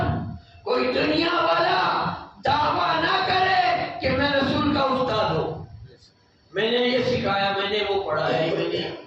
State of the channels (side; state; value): both; identical; correlation 1.00